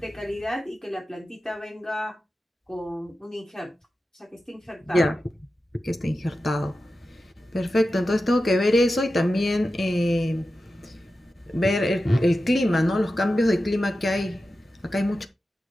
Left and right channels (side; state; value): both; normal; correlation 0.92